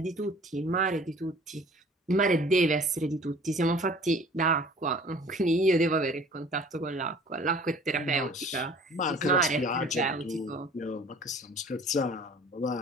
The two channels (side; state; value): both; normal; correlation 0.48